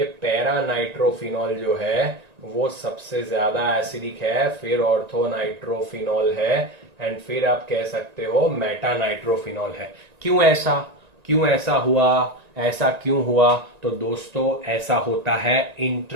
पैरा नाइट्रोफिनॉल जो है वो सबसे ज्यादा एसिडिक है, फिर ऑर्थो नाइट्रोफिनॉल है, एंड फिर आप कह सकते हो मेटा नाइट्रोफिनॉल है। क्यों ऐसा हुआ? ऐसा क्यों हुआ? तो दोस्तों ऐसा होता है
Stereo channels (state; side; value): late; left; 1.9 ms